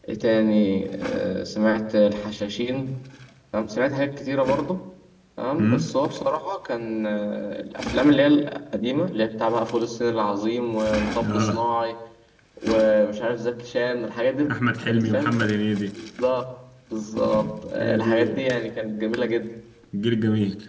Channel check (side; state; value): both; identical; correlation 1.00